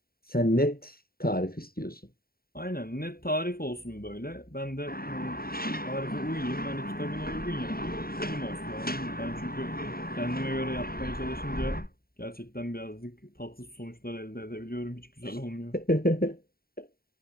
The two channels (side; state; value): right; late; 0.43 ms